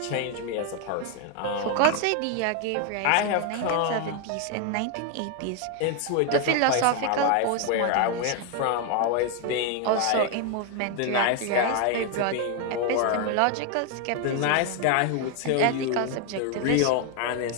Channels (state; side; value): different; both; correlation 0.01